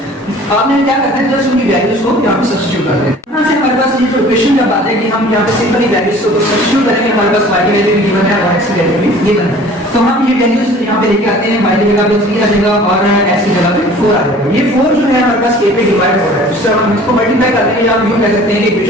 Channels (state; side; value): normal; both; correlation 0.48